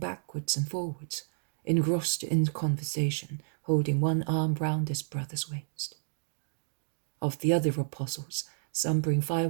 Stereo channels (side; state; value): left; silent; digital silence